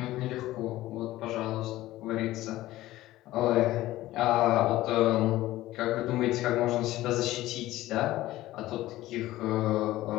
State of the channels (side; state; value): right; quieter; 16.1 dB